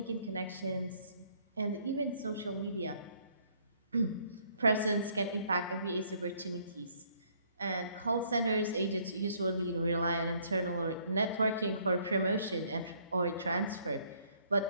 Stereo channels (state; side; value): inverted; both; correlation -0.65